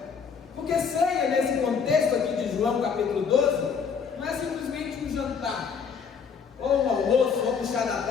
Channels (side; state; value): right; quieter; 6.2 dB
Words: porque ceia nesse contexto aqui de João capítulo 12 não é simplesmente um jantar, ou um almoço, ou um chá da